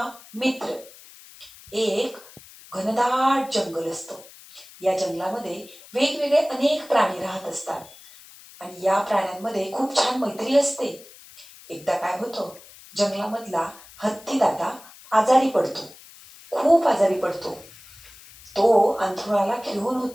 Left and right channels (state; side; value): noise; left; hiss, 21 dB below the sound